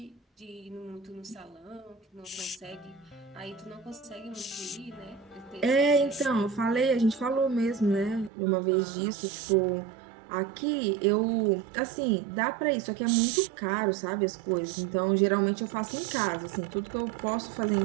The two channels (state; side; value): drops out; left; at 8.3 s